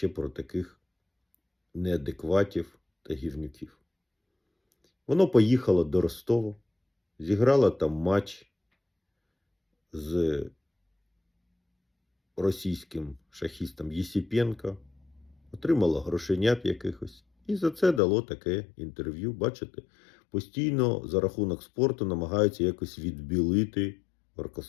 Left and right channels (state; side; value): drops out; right; at 18.0 s